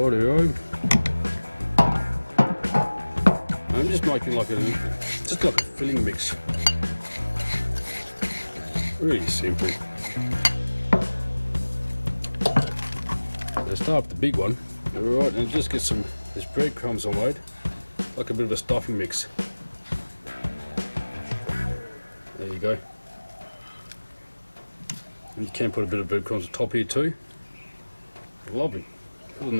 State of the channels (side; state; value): both; inverted; correlation -1.00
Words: I'm just making like a filling mix. Really simple. Let's start with the big one. Alright, and just get this breadcrumbs I made, like a bit of a stuffing mix. There you go. And you can put a bit of breadcrumbs on top here too. Lovely. Put in